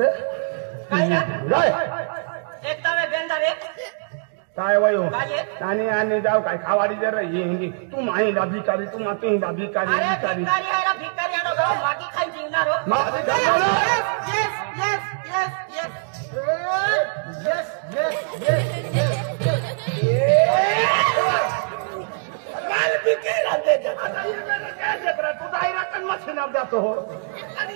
एकदा वे बेंदा वे काय वयो आने जाओ काय खावाडी जरा ये हिंदी तुम आई दा भिकारी तुम आते ही दा भिकारी अरे भिकारी है ना बाकी खाई जीवना रो माल बिके रहते जमाना ये मैंने कैसे करा तू दायरा कन मछना जातो हो अरे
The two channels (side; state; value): left; silent; digital silence